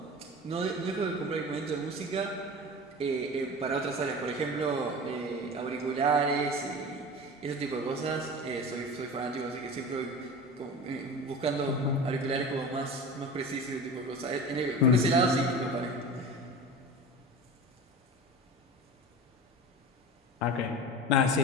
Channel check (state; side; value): normal; both; correlation 0.33